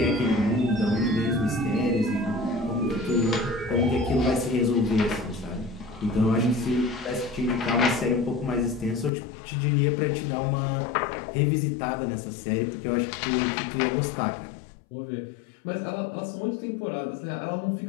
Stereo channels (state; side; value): drops out; right; at 9.1 s